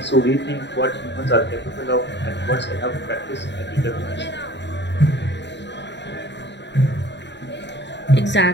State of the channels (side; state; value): right; late; 0.51 ms